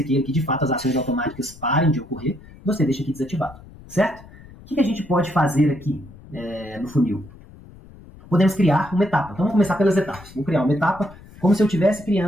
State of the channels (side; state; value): left; noise; rumble, 20 dB below the sound